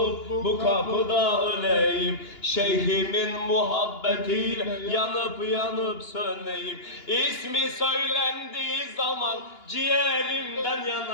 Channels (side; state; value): right; late; 2.9 ms